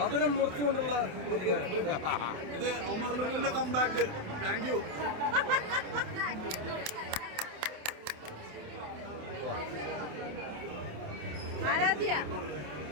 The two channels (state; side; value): late; left; 27 ms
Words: മുറിച്ചുകൊണ്ടുള്ള പ്രതികാരം. ഇത് ഉമറിന്റെ കംബാക്ക്. Thank you. ആരാധ്യ